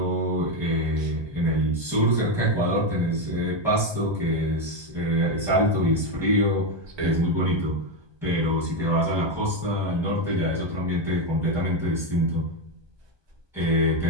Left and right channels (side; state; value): left; late; 1.2 ms